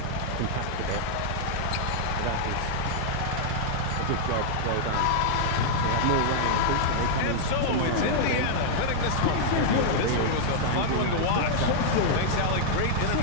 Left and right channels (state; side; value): different; both; correlation -0.01